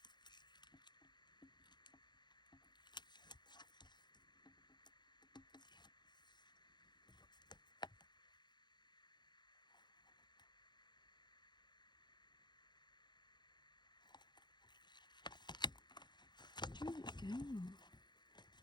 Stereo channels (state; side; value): late; right; 0.21 ms